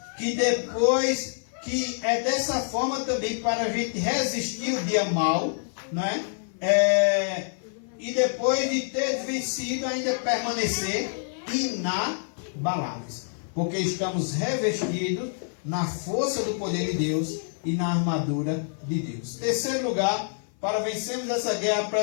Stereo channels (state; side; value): silent; right; 57 dB below the other